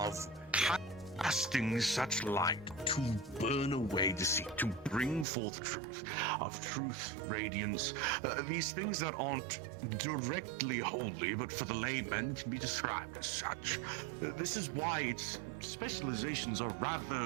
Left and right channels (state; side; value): drops out; left; at 5.2 s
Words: casting such light to burn away deceit, to bring forth truth, of truth's radiance. These things that aren't directly holy, but for the layman can be described as such. This is why its specializations are